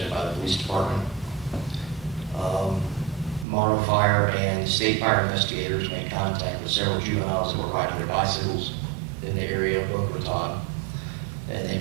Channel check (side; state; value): left; drops out; at 3.5 s